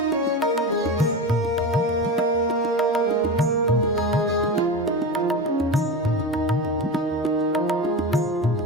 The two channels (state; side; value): normal; both; correlation 0.25